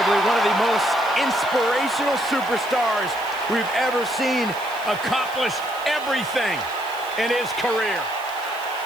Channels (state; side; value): noise; right; hiss, 20 dB below the sound